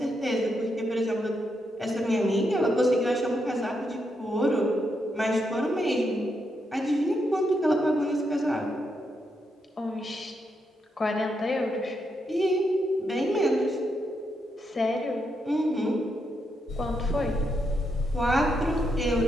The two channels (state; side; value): normal; both; correlation 0.81